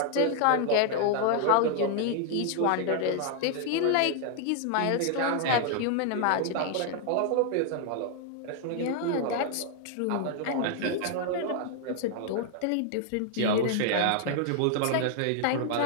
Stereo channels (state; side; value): different; both; correlation 0.00